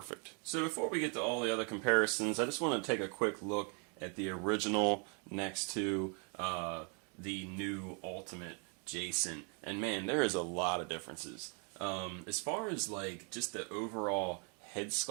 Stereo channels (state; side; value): quieter; left; 37.9 dB